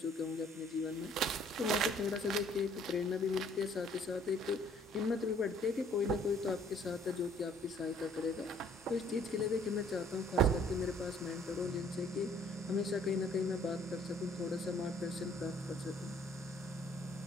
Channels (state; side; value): normal; both; correlation 0.59